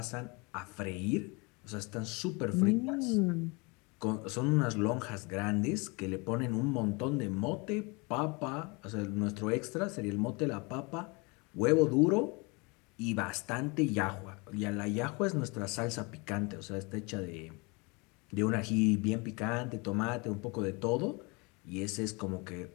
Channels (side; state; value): right; quieter; 28.7 dB